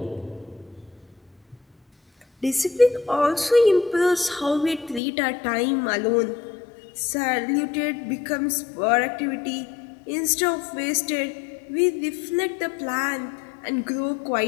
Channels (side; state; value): right; drops out; at 5.0 s